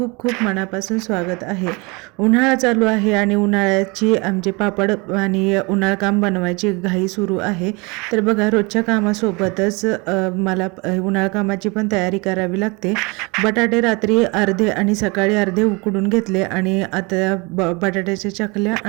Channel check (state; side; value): quieter; left; 27.8 dB